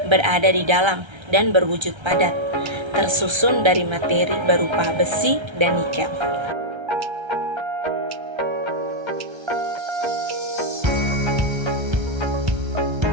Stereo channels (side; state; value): left; late; 1.3 ms